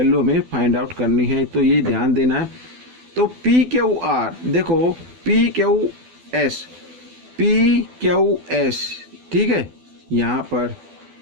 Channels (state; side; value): late; left; 12 ms